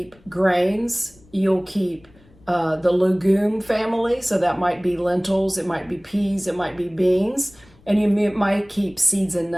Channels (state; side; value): noise; left; rumble, 28 dB below the sound